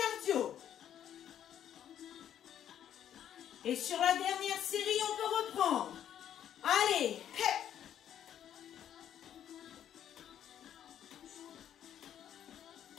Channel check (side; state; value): right; quieter; 10.2 dB